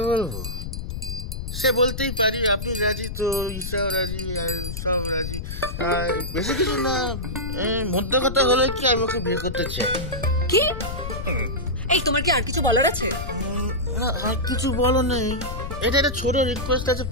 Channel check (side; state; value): left; noise; rumble, 6 dB below the sound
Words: বলবো? সে বলতেই পারি, আপনি রাজি তো ঈশাও রাজি, আর সব রাজি। আর বেশি কিছু না, মধ্যে কথা হলে কি আমি ওকে বিয়ে করতে চাই। কি? এই তোমার কি আর কিছু বলার আছে? না, আর কিছু বলো নেই, এটা একটা ছোট রিকোয়েস্ট আছে,